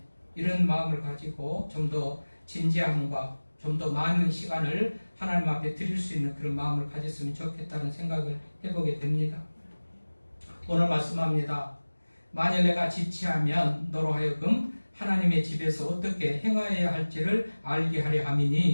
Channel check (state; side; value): inverted; both; correlation -1.00